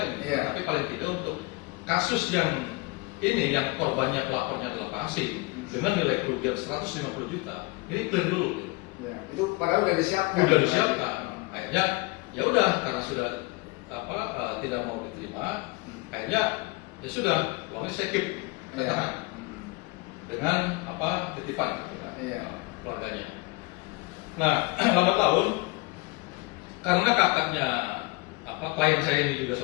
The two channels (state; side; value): quieter; right; 24.8 dB